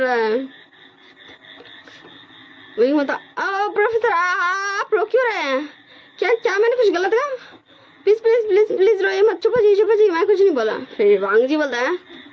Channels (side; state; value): both; identical; correlation 1.00